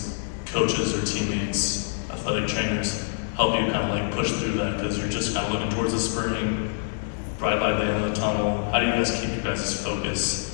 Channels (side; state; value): right; silent; digital silence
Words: coaches or teammates, athletic trainers, help you kind of like push through that because you're just kind of looking towards the spring, bright light at the end of the tunnel? How do you guys keep your guys' focus